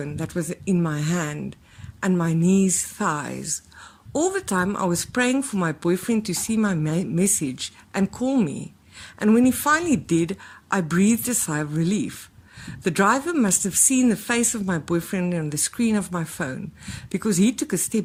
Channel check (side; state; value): both; identical; correlation 1.00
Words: that was in my hand and my knees, thighs. All the time I was praying for my boyfriend to see my message and call me, and when he finally did, I breathed a sigh of relief. The driver must have seen the face of my boyfriend on the screen of my phone, because he took a